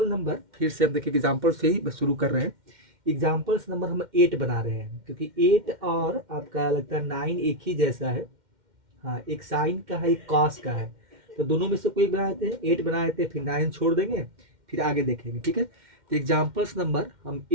नंबर फिर से अब देखिए एग्जाम्पल से ही शुरू कर रहे हैं। एग्जाम्पल्स नंबर हम 8 बना रहे हैं, क्योंकि 8 और आपका लगता है 9 एक ही जैसा है। हाँ, एक साइन का है, एक कॉस का है, तो दोनों में से कोई बना देते हैं। 8 बना देते हैं, फिर 9 छोड़ देंगे, फिर आगे देखेंगे। ठीक है, तो एग्जाम्पल्स नंबर हम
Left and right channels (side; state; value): left; late; 2.1 ms